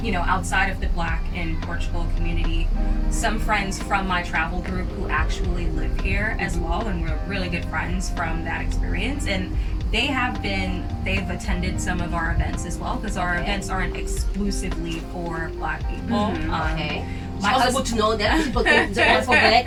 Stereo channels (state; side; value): identical; both; correlation 1.00